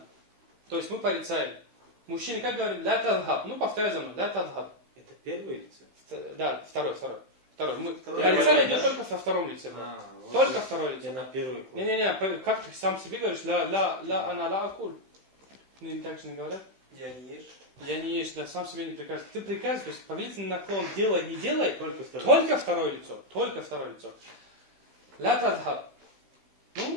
То есть мы порицаем. Мужчины как говорим? Ля тадхаб. Ну, повторяй за мной. Ля тадхаб. Это первое лицо? Да, второй. Мы Второй. порицание Первый, идет да? только во втором лице. вот Только второе лицо. я на первый класс. Не-не-не, как ты сам себе говоришь? Ля ана ла акуль. Ну, им так же не говорят. Я не ешь. Я не ешь, да, сам себе не приказываю. Ты приказываешь, то есть повелительный наклон делай, не делай, Только второй. только второе лицо. Только второе лицо. Ля тадхаб.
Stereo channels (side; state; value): left; late; 16 ms